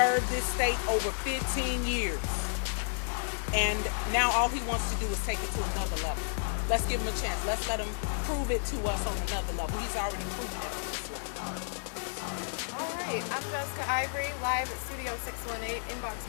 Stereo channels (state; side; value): silent; right; digital silence